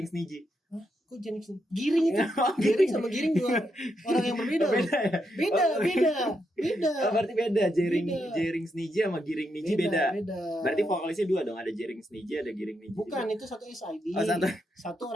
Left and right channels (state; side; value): normal; both; correlation 0.81